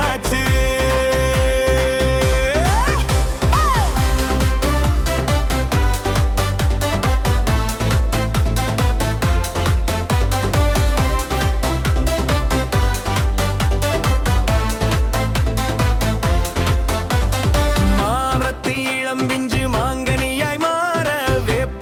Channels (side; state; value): both; identical; correlation 1.00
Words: இளம்பிஞ்சு மாங்கனியாய் மாற,